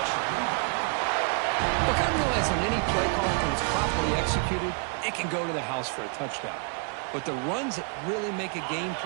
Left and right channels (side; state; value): left; quieter; 38.7 dB